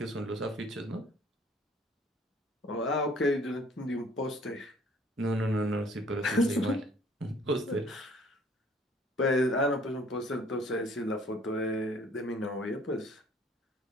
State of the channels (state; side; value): normal; both; correlation 0.56